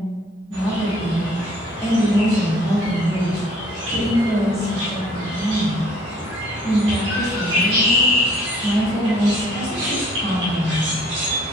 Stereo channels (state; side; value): normal; both; correlation 0.57